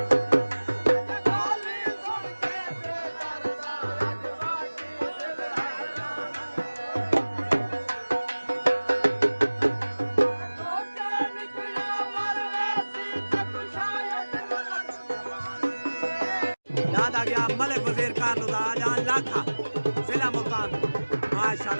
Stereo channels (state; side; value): inverted; both; correlation -1.00